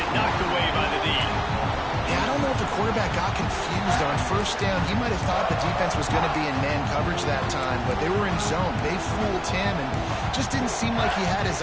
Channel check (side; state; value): both; identical; correlation 1.00